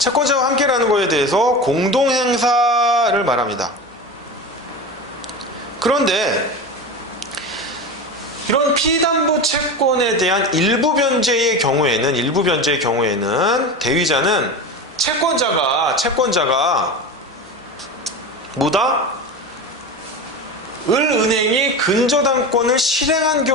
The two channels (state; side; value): normal; both; correlation 0.26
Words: 함께라는 거에 대해서 공동행사를 말합니다. 그런데 이런 피담보 채권에 대한 일부 변제의 경우에는 대위자는 채권자가 뭐다? 을은행이 근저당권을 실행한